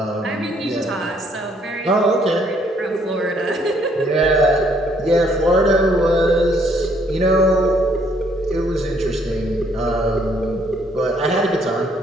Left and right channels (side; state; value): both; normal; correlation 0.67